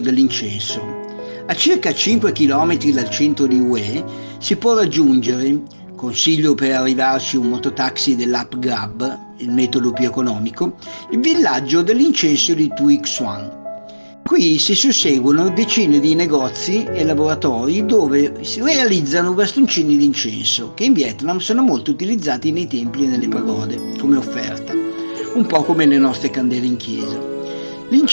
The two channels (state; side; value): inverted; both; correlation -1.00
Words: dell'incenso. A circa 5 km dal centro di Hue si può raggiungere, consiglio per arrivarci un mototaxi dell'app Grab, il metodo più economico, il villaggio dell'incenso di Tuy Xuan. Qui si susseguono decine di negozi e laboratori dove si realizzano bastoncini di incenso, che in Vietnam sono molto utilizzati nei templi e nelle pagode, come offerta, un po' come le nostre candele in chiesa.